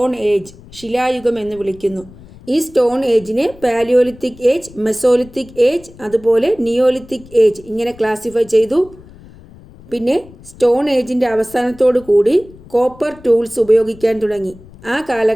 ഏജ്, ശിലായുഗം എന്ന് വിളിക്കുന്നു. ഈ സ്റ്റോൺ ഏജിനെ പാലിയോലിത്തിക് ഏജ്, മെസോലിത്തിക് ഏജ്, അതുപോലെ നിയോലിത്തിക് ഏജ് ഇങ്ങനെ ക്ലാസിഫൈ ചെയ്തു. പിന്നെ സ്റ്റോൺ ഏജിൻ്റെ അവസാനത്തോടു കൂടി കോപ്പർ ടൂൾസ് ഉപയോഗിക്കാൻ തുടങ്ങി. ആ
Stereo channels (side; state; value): left; noise; rumble, 22 dB below the sound